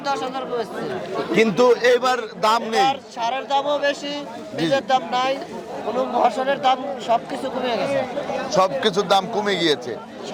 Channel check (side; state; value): both; identical; correlation 1.00